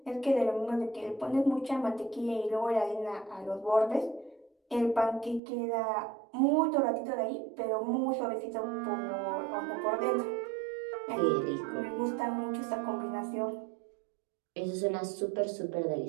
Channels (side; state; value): left; drops out; at 5.4 s